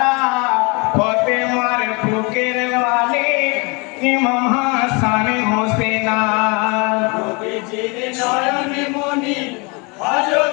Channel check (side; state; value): right; quieter; 29.4 dB